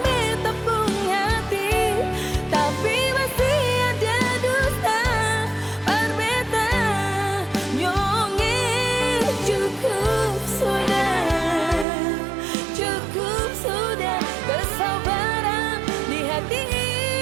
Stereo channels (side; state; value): left; drops out; at 11.9 s